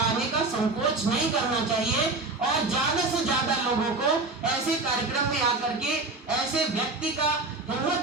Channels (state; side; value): quieter; left; 3.4 dB